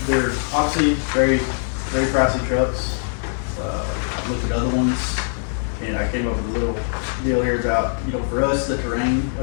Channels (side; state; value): right; silent; digital silence